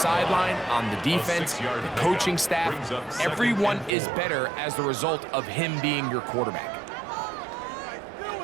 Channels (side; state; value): left; drops out; at 3.9 s